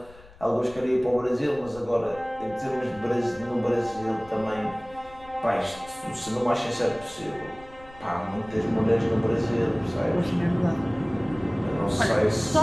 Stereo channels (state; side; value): noise; left; rumble, 22 dB below the sound